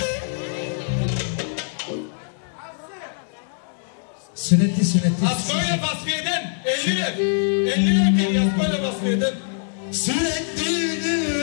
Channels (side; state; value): right; silent; 63 dB below the other